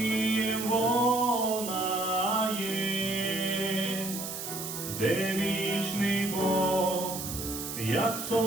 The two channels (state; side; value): noise; right; hiss, 6 dB below the sound